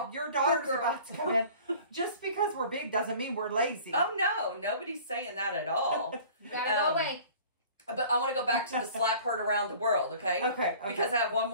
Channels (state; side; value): inverted; both; correlation -0.46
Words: Your daughter's about to come in. Just because we're big doesn't mean we're lazy. Oh no, nobody's saying that at all. You gotta go away. But I want to go back to the slap heard around the world, okay? Okay. Because I have one